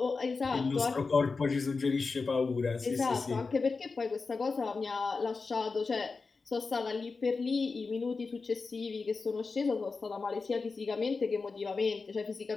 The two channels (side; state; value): right; quieter; 4.3 dB